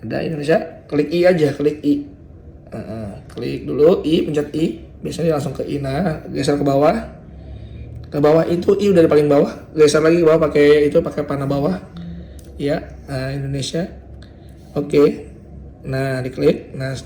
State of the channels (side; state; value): both; identical; correlation 1.00